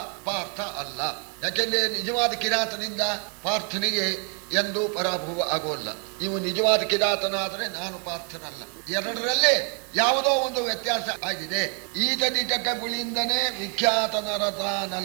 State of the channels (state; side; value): quieter; left; 39.3 dB